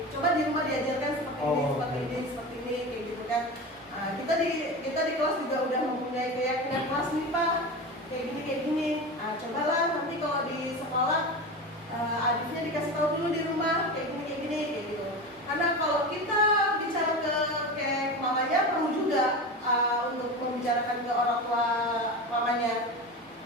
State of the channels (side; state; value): both; normal; correlation 0.26